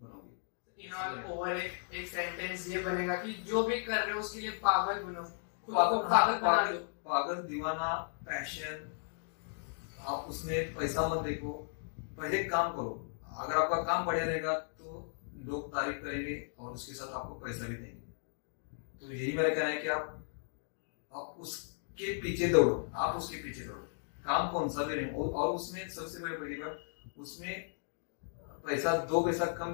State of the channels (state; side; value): silent; right; digital silence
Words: बनोगे। इन ऑल ओवर एक सेंटेंस ये बनेगा कि जो भी कर रहे हो उसके लिए पागल बनो, खुद को पागल बना लो। पागल, दीवाना, पैशन, आप उसमें पैसा मत देखो, पहले काम करो। अगर आपका काम बढ़िया रहेगा तो लोग तारीफ करेंगे और उसके साथ आपको पैसा भी देंगे। तो यही मेरा कहना है कि आप उसके पीछे दौड़ो, आप उसके पीछे दौड़ो, काम कौन सा भी रहे। और उसमें सबसे बड़ी बात, उसमें पैसा 2 पैसा कम